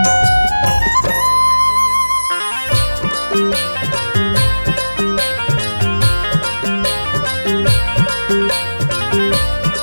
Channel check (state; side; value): inverted; both; correlation -1.00